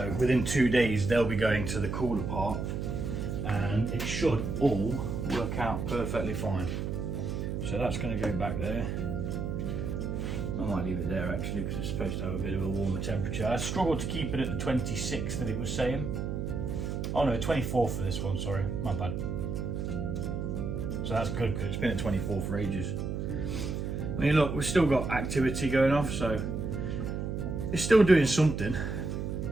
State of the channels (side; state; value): right; noise; hum, 3 dB below the sound